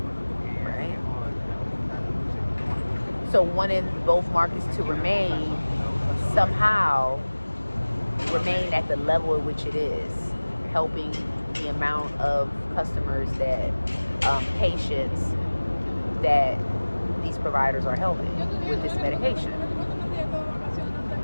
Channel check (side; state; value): both; inverted; correlation -1.00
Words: right? So wanting both markets to somehow remain at the level at which it is, helping the amount of customers patients that these providers are helping with this medication.